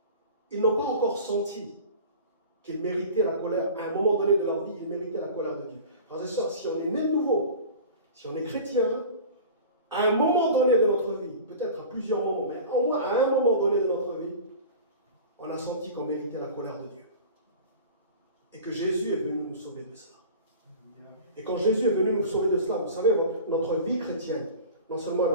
ils n'ont pas encore senti qu'ils méritaient la colère. À un moment donné de leur vie, ils méritaient la colère de Dieu. Frères et sœurs, si on est né de nouveau, si on est chrétien, à un moment donné de notre vie, peut-être à plusieurs moments, mais au moins à un moment donné de notre vie, on a senti qu'on méritait la colère de Dieu. Et que Jésus est venu nous sauver de cela. Et quand Jésus est venu nous sauver de cela, vous savez, notre vie chrétienne, non seulement elle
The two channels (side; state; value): both; inverted; correlation -0.37